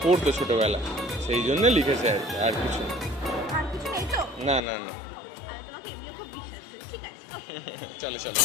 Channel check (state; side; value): drops out; right; at 4.6 s